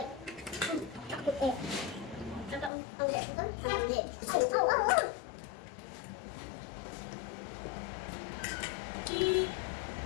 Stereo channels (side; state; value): right; drops out; at 2.7 s